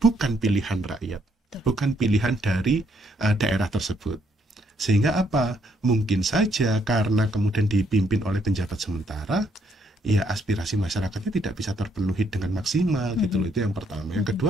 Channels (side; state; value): both; normal; correlation 0.71